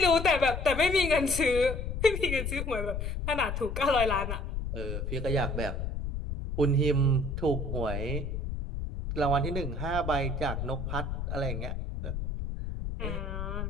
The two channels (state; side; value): noise; left; rumble, 4 dB below the sound